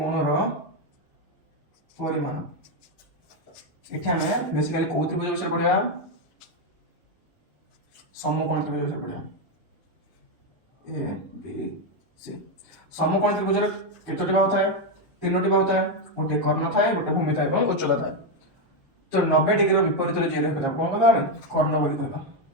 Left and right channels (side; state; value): both; normal; correlation 0.05